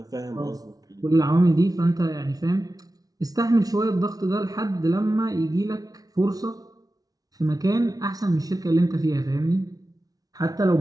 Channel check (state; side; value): late; left; 0.18 ms